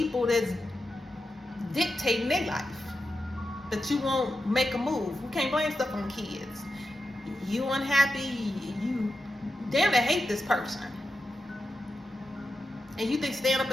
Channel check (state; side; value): normal; both; correlation 0.89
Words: that's dictating their life, that you won't make a move. We can't blame stuff on kids. You unhappy, you damn near hate this person. And you think staying up